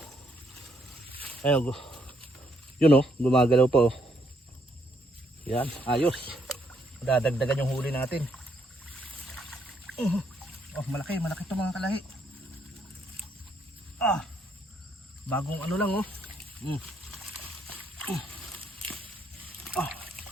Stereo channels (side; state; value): both; normal; correlation 0.72